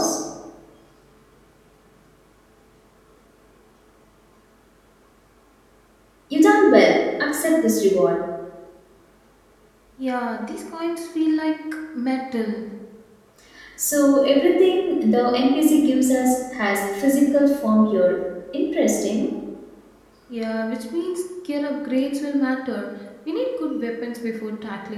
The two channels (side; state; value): both; identical; correlation 1.00